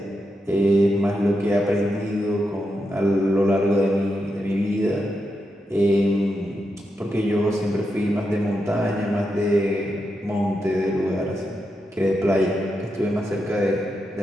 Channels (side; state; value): both; normal; correlation 0.85